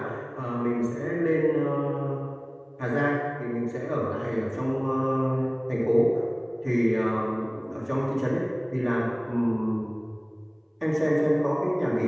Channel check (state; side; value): identical; both; correlation 1.00